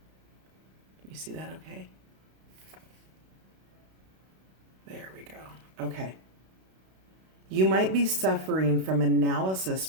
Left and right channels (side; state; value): left; late; 32 ms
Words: you see that okay? There we go. Okay. You might be suffering from analysis